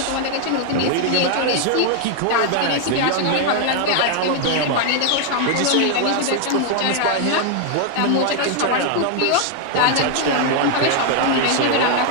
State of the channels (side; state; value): both; different; correlation 0.00